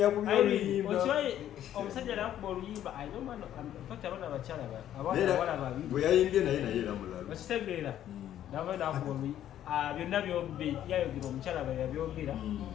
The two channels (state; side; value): quieter; right; 11.4 dB